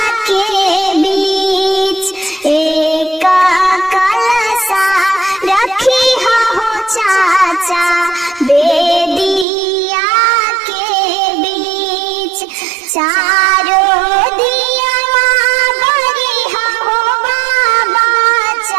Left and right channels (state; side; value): drops out; left; at 9.5 s